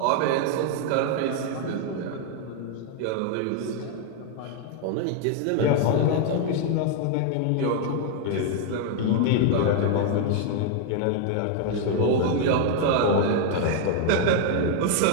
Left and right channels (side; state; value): both; different; correlation 0.00